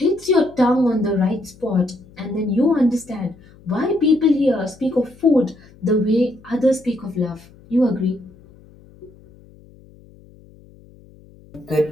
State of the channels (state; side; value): noise; left; hum, 25 dB below the sound